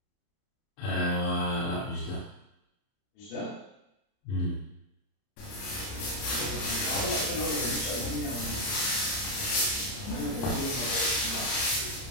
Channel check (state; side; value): late; right; 30 ms